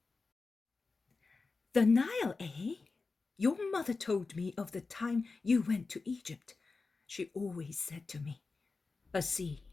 The Nile, eh? Your mother told me of the time you went to Egypt. She always said to me, a sea,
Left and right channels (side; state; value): right; quieter; 4.1 dB